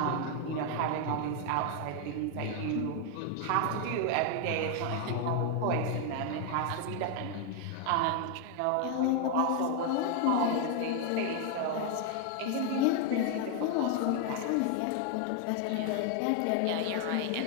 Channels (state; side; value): different; both; correlation 0.01